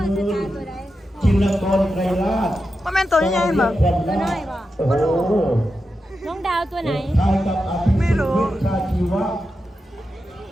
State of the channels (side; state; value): both; normal; correlation 0.89